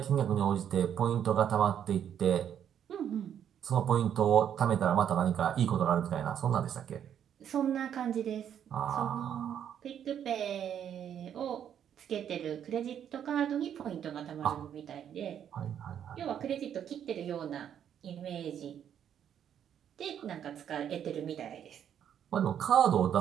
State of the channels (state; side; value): quieter; left; 9.2 dB